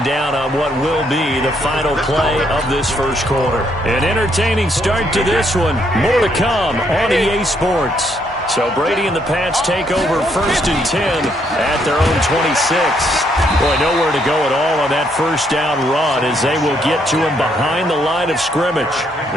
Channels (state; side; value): normal; both; correlation 0.72